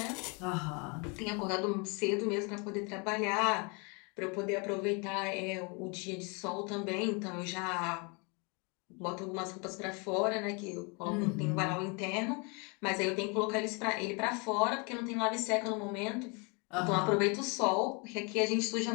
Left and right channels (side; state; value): right; quieter; 31.9 dB